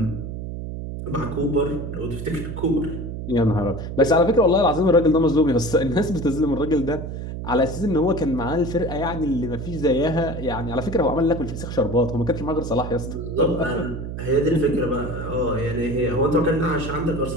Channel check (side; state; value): right; noise; hum, 7 dB below the sound